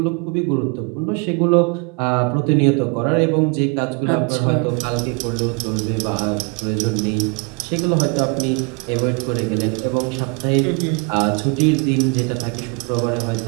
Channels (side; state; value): left; quieter; 32.9 dB